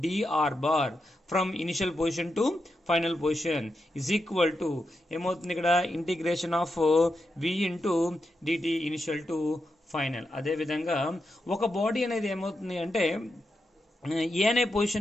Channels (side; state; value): both; normal; correlation 0.86